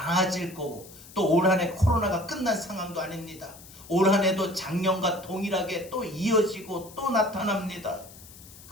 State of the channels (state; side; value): noise; left; hiss, 19 dB below the sound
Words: 거고 또 올 한 해 코로나가 끝난 상황도 아닙니다. 올 한 해도 작년과 동일하게 또 이어지고 또 나타납니다.